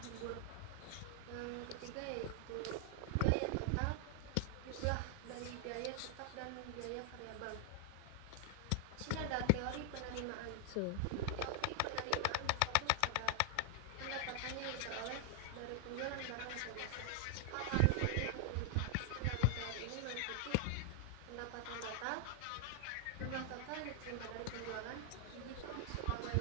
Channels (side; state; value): both; different; correlation 0.00